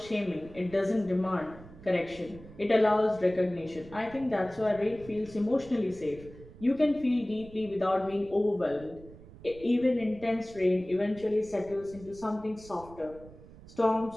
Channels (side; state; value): right; noise; rumble, 19 dB below the sound